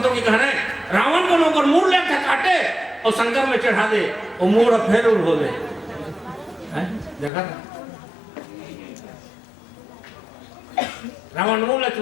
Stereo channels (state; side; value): drops out; right; at 7.3 s